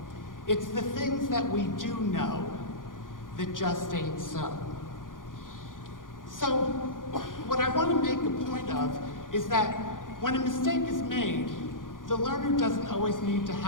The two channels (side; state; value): right; late; 0.89 ms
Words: It's the things that we do know that just ain't so. So, what I want to make a point of is that when a mistake is made, the learner doesn't always need to